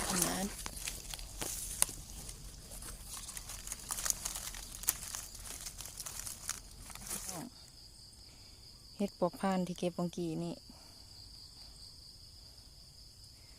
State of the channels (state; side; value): identical; both; correlation 1.00